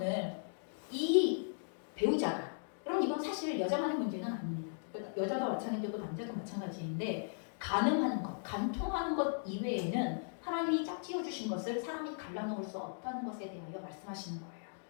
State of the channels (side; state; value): right; silent; digital silence